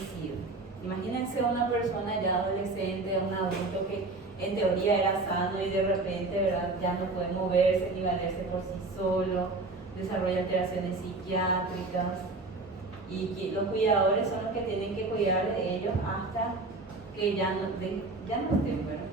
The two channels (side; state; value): left; quieter; 3.4 dB